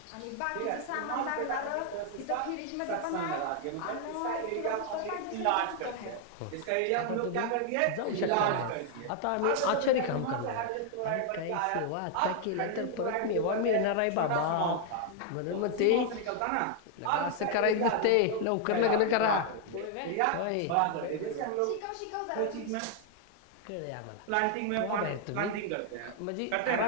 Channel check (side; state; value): both; different; correlation 0.00